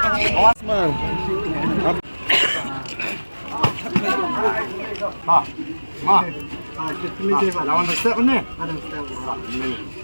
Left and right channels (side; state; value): both; inverted; correlation -1.00